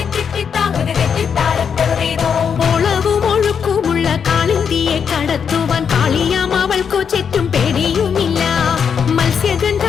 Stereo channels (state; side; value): quieter; right; 7.0 dB